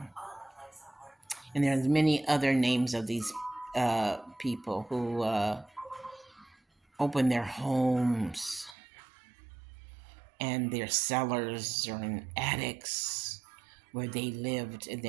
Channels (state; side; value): drops out; left; at 8.8 s